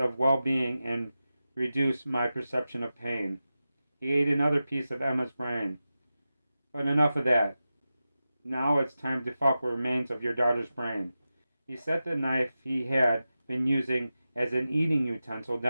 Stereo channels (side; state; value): both; inverted; correlation -0.93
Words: well-being and reduce my perception of pain. He ate another piece of Emma's brain. But enough of that. Now it's time to fuck with remains of your daughter's brain. He set the knife he had been using as an eating utensil